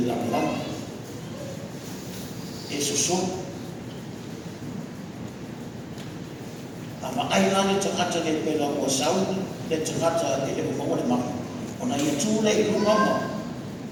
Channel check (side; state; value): both; identical; correlation 1.00